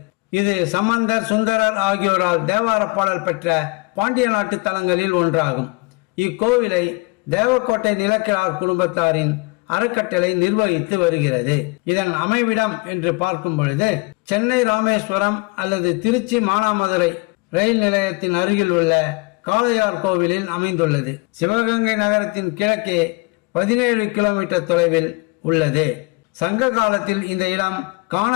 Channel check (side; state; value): right; quieter; 27.1 dB